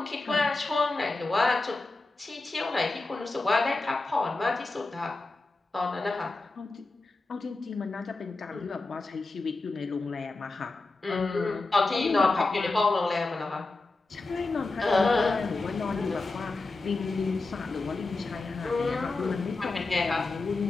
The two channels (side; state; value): right; quieter; 3.4 dB